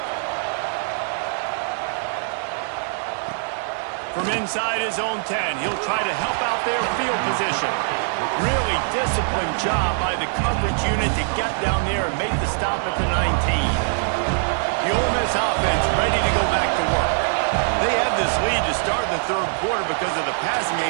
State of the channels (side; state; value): left; silent; digital silence